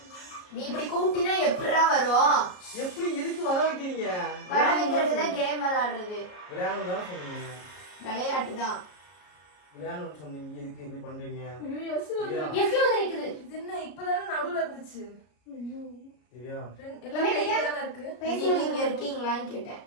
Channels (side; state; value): right; late; 33 ms